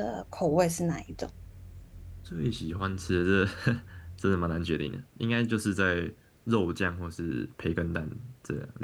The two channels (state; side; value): identical; both; correlation 1.00